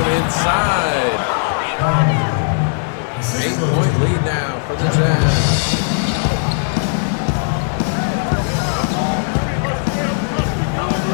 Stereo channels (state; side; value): silent; right; digital silence